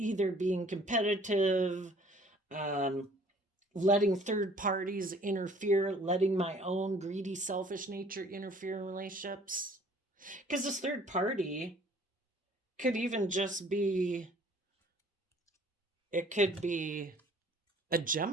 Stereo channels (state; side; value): normal; both; correlation 0.55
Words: being competitive, um, letting third parties interfere, letting my own greedy, selfish nature interfere in relationships. Because this third party could even just be, it could be a